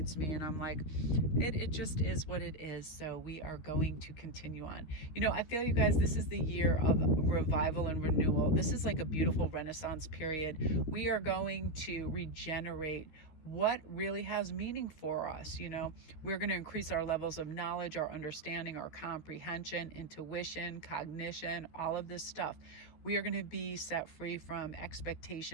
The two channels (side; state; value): right; late; 13 ms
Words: me, and I'm like, it just is what it is. So we are going to continue on. You know, I feel, you guys, this is the year of revival and renewal. This is like a beautiful Renaissance period. We are going to regenerate what really has meaning for us. You know, we're going to increase our levels of knowledge, our understanding, our comprehension, intuition, cognition, all of this stuff. We are going to be set free from